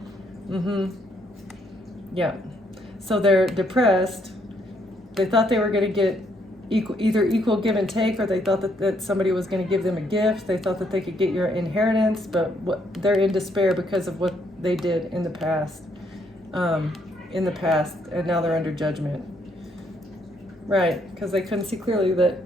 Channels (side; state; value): both; normal; correlation 0.71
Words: Yeah. So they're depressed. They thought they were going to get either equal give and take, or they thought that somebody was going to give them a gift. They thought that they could get your inheritance, but they're in despair because of what they did in the past. And now they're under judgment. Right, because they couldn't see clearly